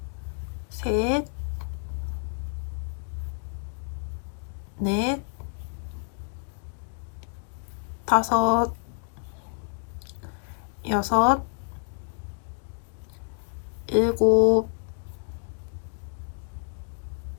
셋, 넷, 다섯, 여섯, 일곱,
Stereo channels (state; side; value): silent; right; 59 dB below the other